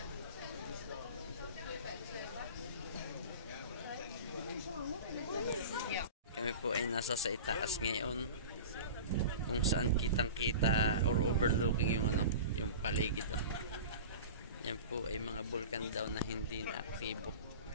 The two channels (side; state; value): both; inverted; correlation -0.35